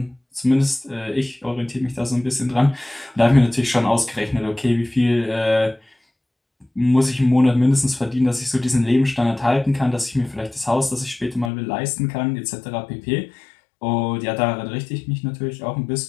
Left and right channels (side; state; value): right; drops out; at 11.5 s